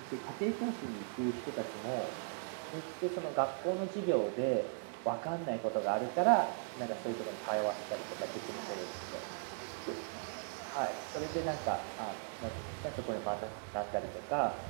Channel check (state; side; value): silent; left; digital silence